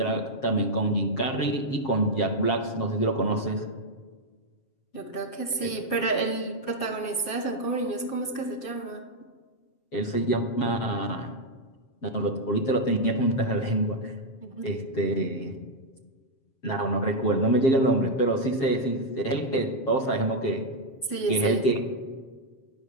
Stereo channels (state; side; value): late; right; 7.5 ms